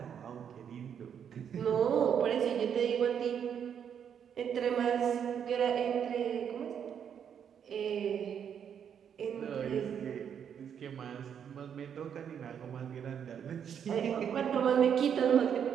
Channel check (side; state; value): left; quieter; 8.2 dB